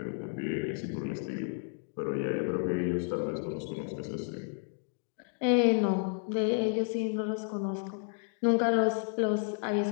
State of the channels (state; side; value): silent; right; 57 dB below the other